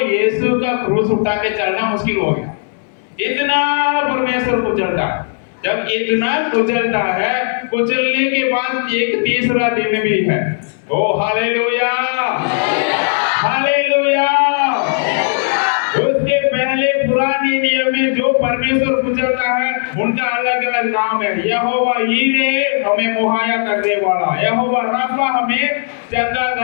का क्रूस उठा के चलना मुश्किल हो गया। इतना परमेश्वर कुचलता है। जब इतना कुचलता है, कुचलने के बाद एक तीसरा दिन भी है। ओ हालेलुया, हालेलुया। उसके पहले पुराने नियम में जो परमेश्वर कुचलता है उनका अलग अलग नाम है। यहोवा यीरे हमें मुहैया करने वाला, यहोवा राफा हमें चंगा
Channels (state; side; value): silent; right; 69 dB below the other